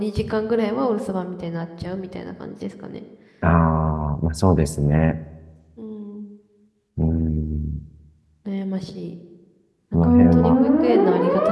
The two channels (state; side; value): identical; both; correlation 1.00